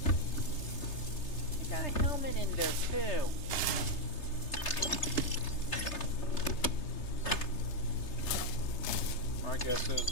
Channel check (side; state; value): right; late; 3.3 ms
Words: I got a helmet in there too. My guess is